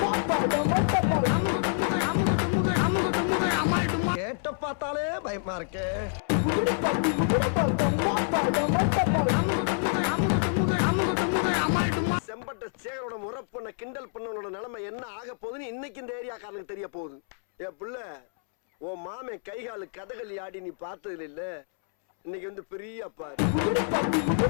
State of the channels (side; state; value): right; silent; 60 dB below the other